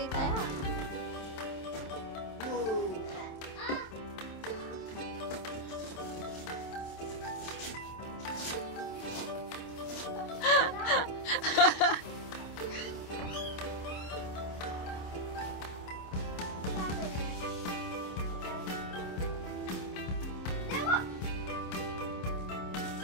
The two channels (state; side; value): late; right; 26 ms